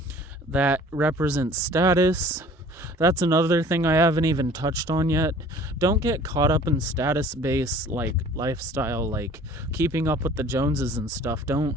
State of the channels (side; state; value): both; normal; correlation 0.49